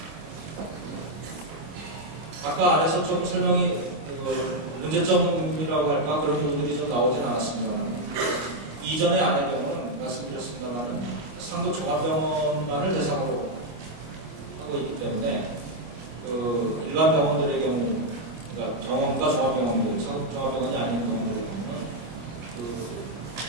아까 안에서 좀 설명이 문제점이라고 할까 그런 부분들이 좀 나오진 않았습니다만, 이전의 안의 경우는 말씀드렸습니다만 상급 종합병원만을 대상으로 하고 있기 때문에 일반 병원들의 경우, 그러니까 정원과 종합병원들, 상급 종합병원이 아닌 병원들의 경우는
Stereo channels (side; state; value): left; late; 25 ms